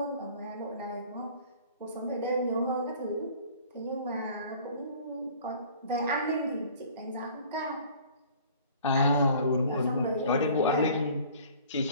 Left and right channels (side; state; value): both; inverted; correlation -0.49